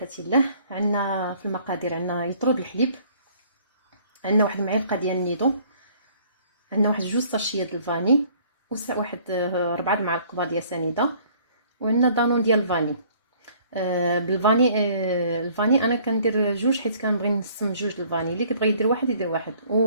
الله. عندنا في المقادير عندنا يطرد الحليب، عندنا واحد المعلقه ديال النيدو، عندنا واحد 2 ساشيه ديال الفاني، واحد 4 المعالق كبار ديال سنيده، وعندنا دانون ديال الفاني. بالفاني الفاني انا كندير 2 حيت كنبغي نسم 2 الفاني. اللي كيبغي يدير واحد يدير واحد،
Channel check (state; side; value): inverted; both; correlation -0.57